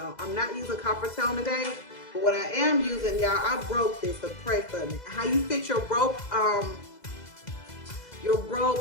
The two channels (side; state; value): right; late; 2.0 ms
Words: I'm not using copper tone today, but what I am using, y'all, I broke this, so pray for me. How you fit your broke